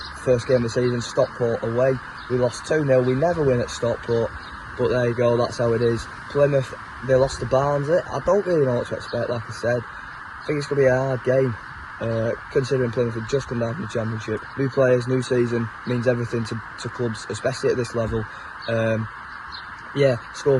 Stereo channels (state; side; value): identical; both; correlation 1.00